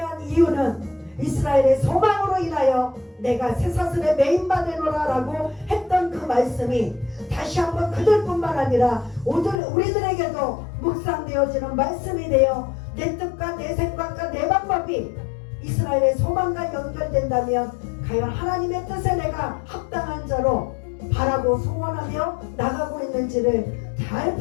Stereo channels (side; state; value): right; drops out; at 9.6 s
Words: 이유는 이스라엘의 소망으로 인하여 내가 쇠사슬에 매인받으노라 라고 했던 그 말씀이 다시 한번 그들뿐만 아니라 우리들에게도 묵상되어지는 말씀이 되어 내 뜻과 내 생각과 내 방법이 이스라엘의 소망과 연결된다면 과연 하나님의 뜻에 내가 합당한 자로 바라고 소원하며 나가고 있는지를 잘